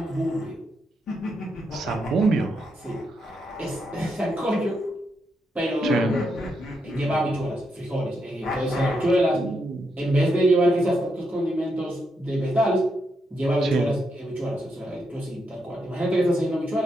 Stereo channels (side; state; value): both; normal; correlation 0.81